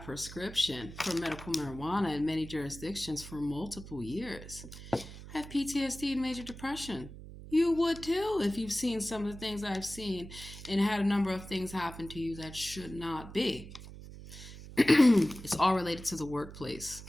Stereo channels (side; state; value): right; noise; hum, 14 dB below the sound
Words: prescription for medical marijuana in many jurisdictions for multiple years. I have PTSD and major depression. You would too if you've seen some of the things I've seen and had a number of things happen to you that should not be. It's all related to the workplace.